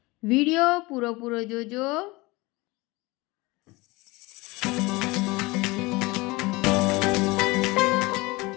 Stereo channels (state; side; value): quieter; right; 23.0 dB